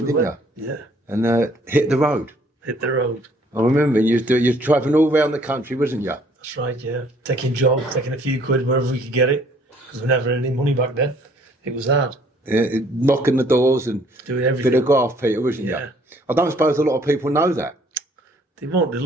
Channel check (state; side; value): normal; both; correlation 0.60